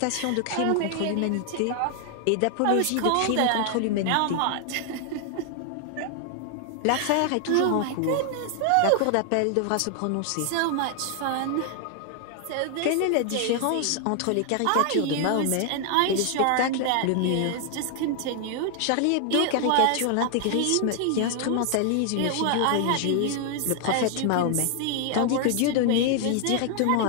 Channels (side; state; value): both; different; correlation 0.00